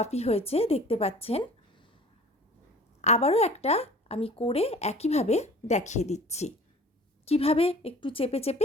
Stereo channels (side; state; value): both; normal; correlation 0.46